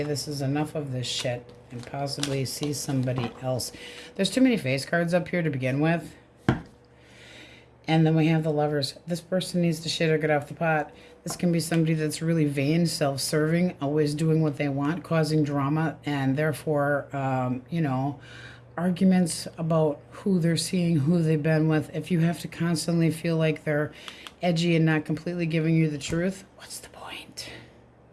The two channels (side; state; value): both; identical; correlation 1.00